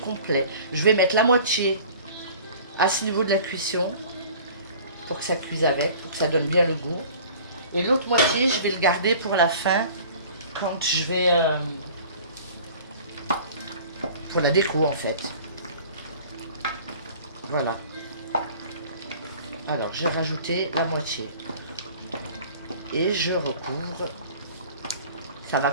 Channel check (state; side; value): inverted; both; correlation -0.46